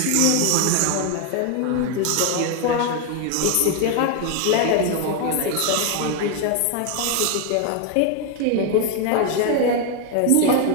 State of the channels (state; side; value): different; both; correlation 0.01